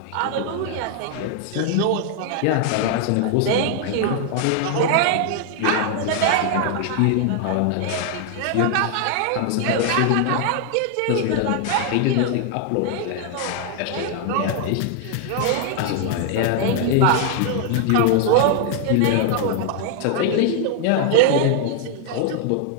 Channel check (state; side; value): different; both; correlation 0.00